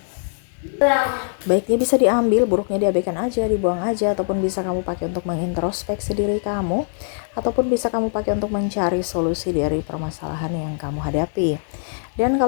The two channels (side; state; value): right; silent; digital silence